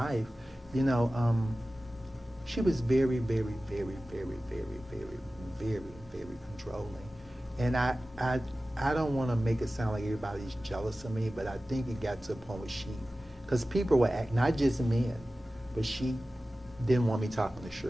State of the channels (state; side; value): normal; both; correlation 0.96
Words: she was very, very, very, very, very, very, very, very controlling. And I don't want to make it sound like everybody's jealous of me, but I think it got to a point where because people were not just men, but she didn't want me talking to